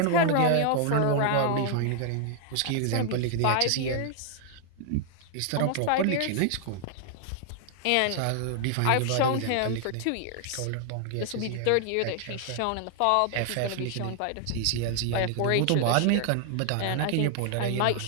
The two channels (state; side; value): different; both; correlation 0.00